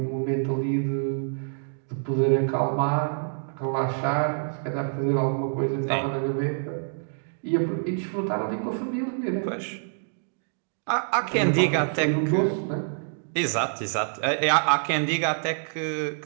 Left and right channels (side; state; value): left; silent; digital silence